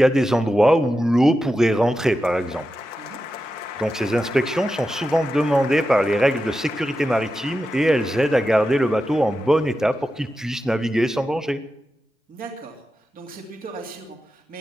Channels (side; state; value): both; normal; correlation 0.91